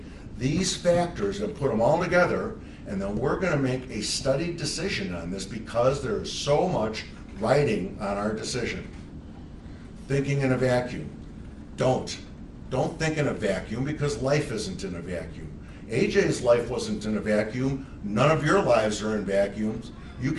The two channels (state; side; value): identical; both; correlation 1.00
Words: these factors and put them all together, and then we're going to make a studied decision on this because there is so much writing on our decision. Thinking in a vacuum. Don't think in a vacuum, because life isn't in a vacuum. AJ's life wasn't in a vacuum. None of your lives are in vacuums. You